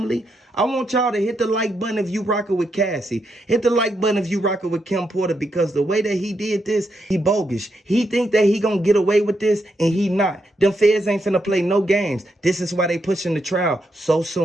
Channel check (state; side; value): normal; both; correlation 0.81